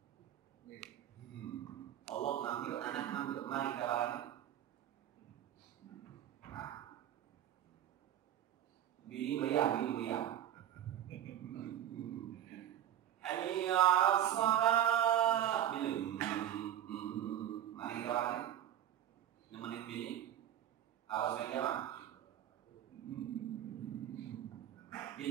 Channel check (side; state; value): left; quieter; 11.2 dB